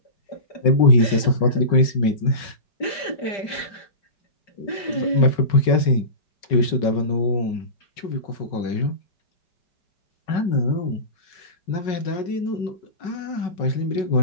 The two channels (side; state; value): right; late; 5.4 ms